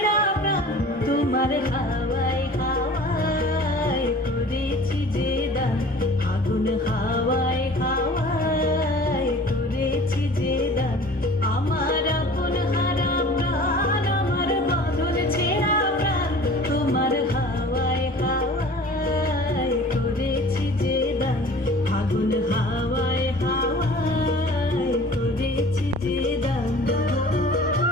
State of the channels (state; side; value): normal; both; correlation 0.45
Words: প্রাণ। তোমার হাওয়ায় হাওয়ায় করেছি যে দান, আগুন হাওয়ায় হাওয়ায় করেছি যে দান, আমার আপন হারা প্রাণ, আমার বাঁধন ছেঁড়া প্রাণ। তোমার হাওয়ায় হাওয়ায় করেছি যে দান, আগুন হাওয়ায় হাওয়ায় করেছি যে দান।